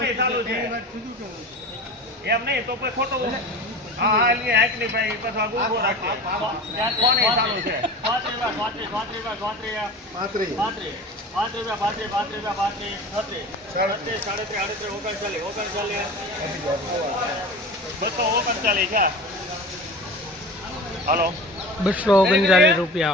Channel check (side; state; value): both; normal; correlation 0.34